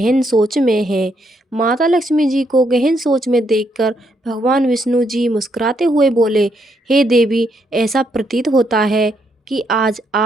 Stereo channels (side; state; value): both; normal; correlation 0.75